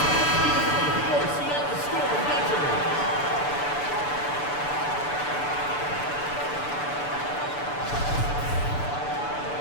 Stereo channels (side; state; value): right; late; 6.9 ms